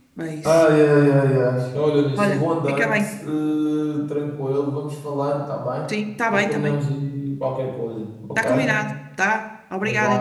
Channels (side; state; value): both; identical; correlation 1.00